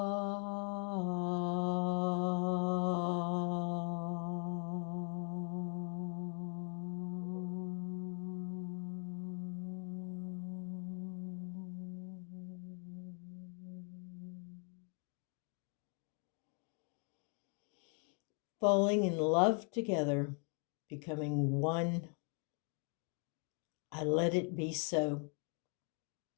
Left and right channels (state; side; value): quieter; right; 38.4 dB